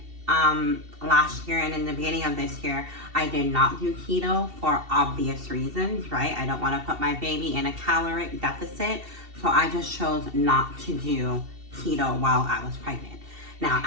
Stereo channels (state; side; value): late; left; 2.7 ms